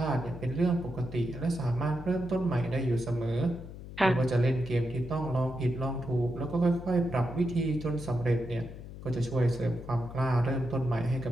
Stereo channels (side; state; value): left; noise; hum, 13 dB below the sound